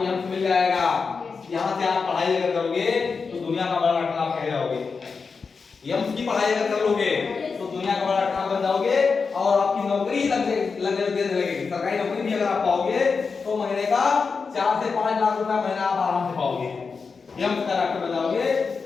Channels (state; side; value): quieter; right; 5.0 dB